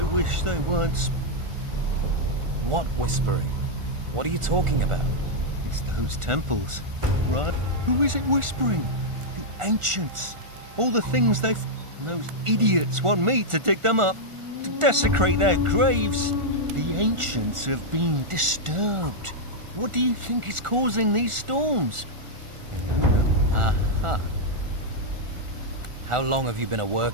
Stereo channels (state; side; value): late; left; 1.4 ms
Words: wish they weren't. What whispering? What are you talking about? It's those temples, right? Who is it whispering? The ancients. All the things they've... And those idiots want me to dig them up, to desecrate their graves. The ancients have been disturbed. What do you think is causing these storms? Aha. How long have you been at